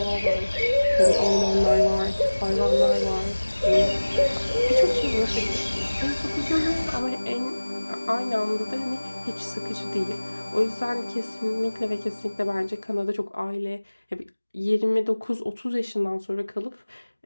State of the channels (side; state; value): both; inverted; correlation -1.00